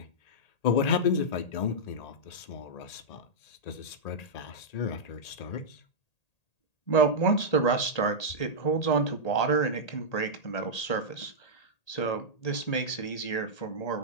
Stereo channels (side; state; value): right; late; 1.8 ms